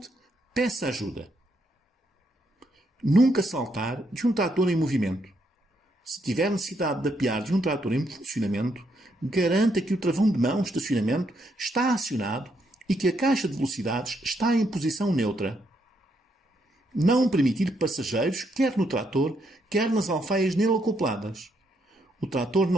peça ajuda. Nunca saltar de um trator em movimento. Se tiver necessidade de apear de um trator em funcionamento, garanta que o travão de mão de estacionamento está acionado e que a caixa de velocidades está em posição neutra. Não permitir passageiros, quer no trator, quer nas alfaias nele acopladas. O trator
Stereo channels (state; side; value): normal; both; correlation 0.76